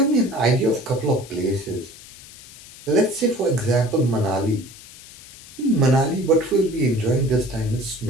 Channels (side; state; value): left; noise; hiss, 19 dB below the sound